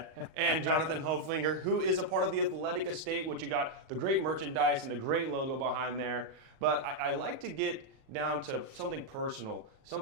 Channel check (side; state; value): left; late; 37 ms